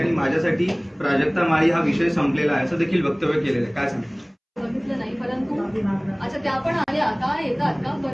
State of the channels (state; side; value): identical; both; correlation 1.00